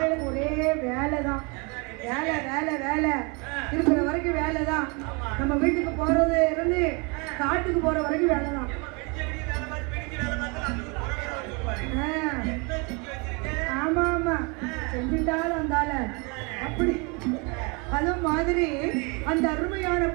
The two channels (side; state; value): left; quieter; 31.1 dB